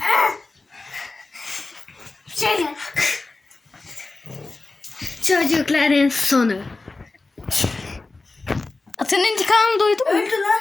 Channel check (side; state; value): right; quieter; 3.5 dB